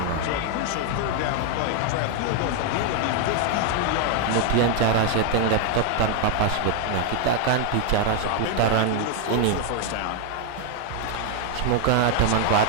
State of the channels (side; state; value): both; different; correlation 0.00